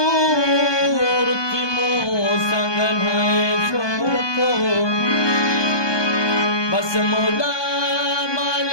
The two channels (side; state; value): right; late; 1.2 ms